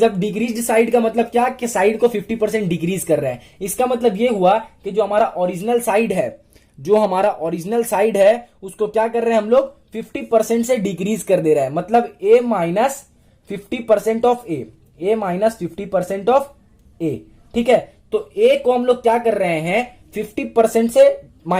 डिक्रीज्ड साइड का मतलब क्या, कि साइड को 50% डिक्रीज कर रहे हैं, इसका मतलब ये हुआ कि जो हमारा ओरिजिनल साइड है, जो हमारा ओरिजिनल साइड है उसको क्या कर रहे हैं हम लोग 50% से डिक्रीज कर दे रहे हैं, मतलब a minus 50% of a, a minus 50% of a, ठीक है। तो a को हम लोग क्या कर रहे हैं 50% से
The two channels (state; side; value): identical; both; correlation 1.00